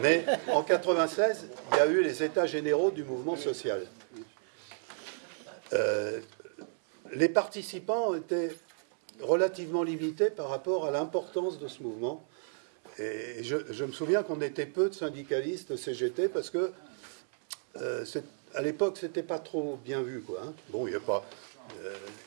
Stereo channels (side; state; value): left; silent; 56 dB below the other